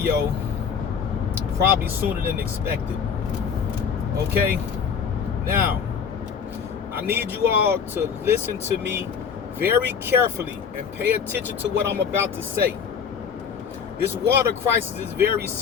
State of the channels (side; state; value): right; quieter; 6.7 dB